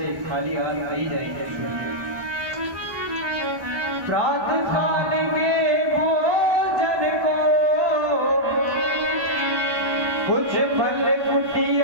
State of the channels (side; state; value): left; late; 1.1 ms